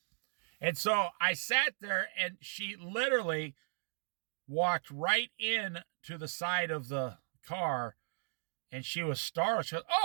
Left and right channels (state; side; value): silent; left; digital silence